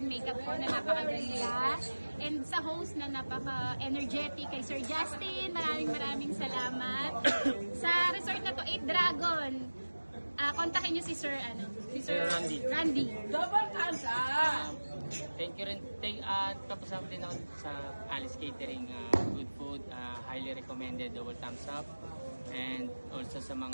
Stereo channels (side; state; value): both; inverted; correlation -1.00